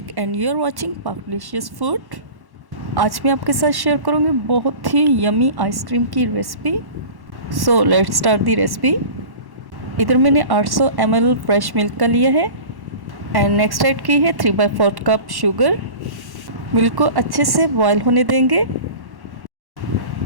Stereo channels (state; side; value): late; left; 1.1 ms